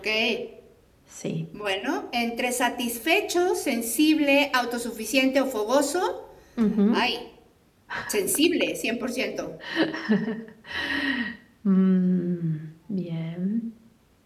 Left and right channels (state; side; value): identical; both; correlation 1.00